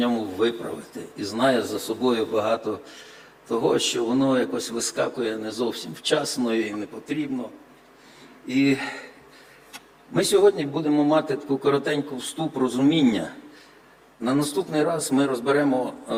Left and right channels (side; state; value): both; identical; correlation 1.00